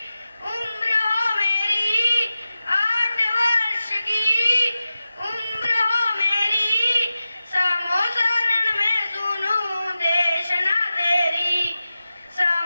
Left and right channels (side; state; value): both; inverted; correlation -0.93